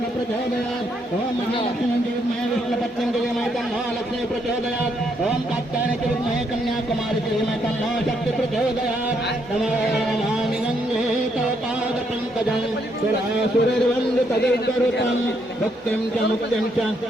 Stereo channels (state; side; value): normal; both; correlation 0.74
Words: प्रचोदयात् ॐ महालक्ष्मी विद्महे विष्णुपत्न्यै धीमहि तन्नो लक्ष्मी प्रचोदयात् ॐ कात्यायनाय विद्महे कन्याकुमारी धीमहि तन्नो शक्ति प्रचोदयात् नमामि गंगे तव पादपङ्कजं सुरासुरैर्वन्दितदैर्गरुतं भक्तिं च मुक्तिं च